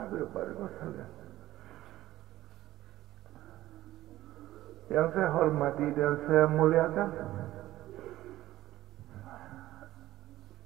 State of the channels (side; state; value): left; quieter; 15.2 dB